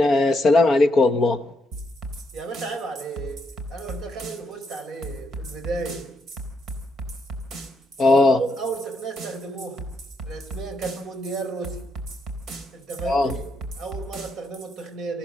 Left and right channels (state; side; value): normal; both; correlation 0.78